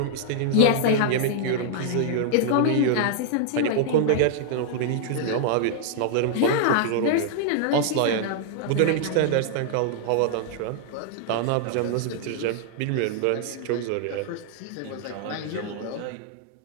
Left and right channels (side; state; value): both; different; correlation -0.01